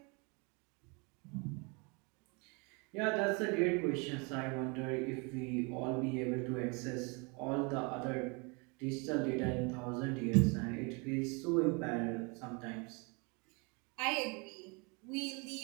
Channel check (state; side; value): quieter; left; 31.0 dB